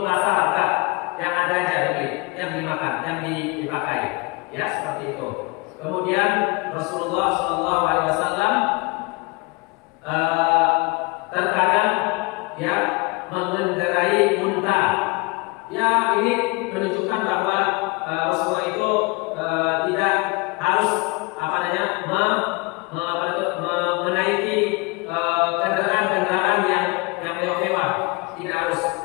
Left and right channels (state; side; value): quieter; right; 27.4 dB